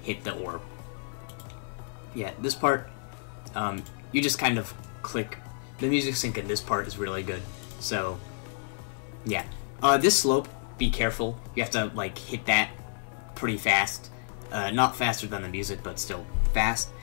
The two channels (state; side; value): silent; right; 58 dB below the other